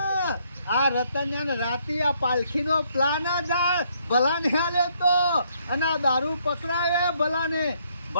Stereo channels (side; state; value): both; inverted; correlation -0.70